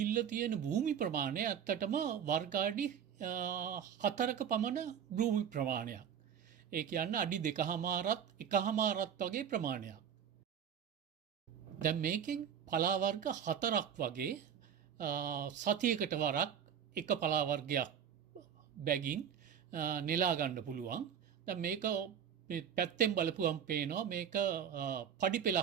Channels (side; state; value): left; quieter; 8.5 dB